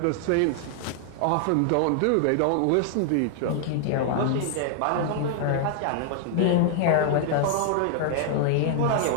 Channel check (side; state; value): both; different; correlation 0.00